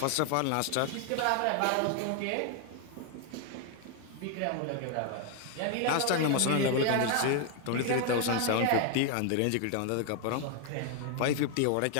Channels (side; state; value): both; different; correlation 0.00